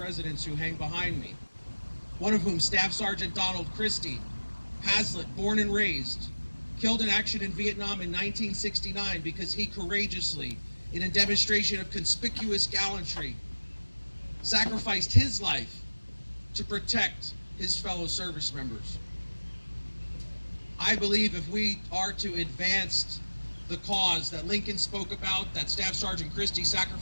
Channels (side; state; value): both; inverted; correlation -1.00